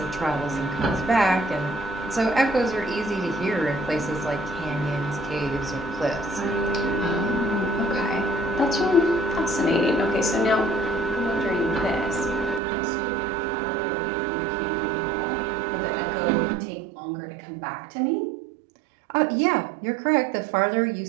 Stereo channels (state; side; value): drops out; left; at 12.6 s